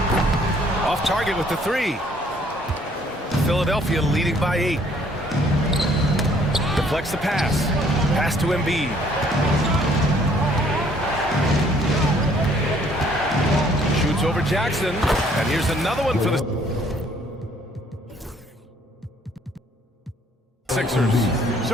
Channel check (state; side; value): normal; both; correlation 0.62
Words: Off target with the 3. Philadelphia leading by 8. Deflects the pass. Pass to Embiid. Shoots over Jackson. And here's another one for the Sixers.